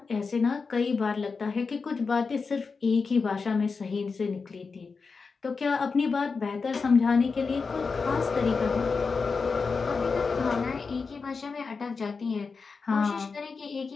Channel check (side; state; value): right; quieter; 4.8 dB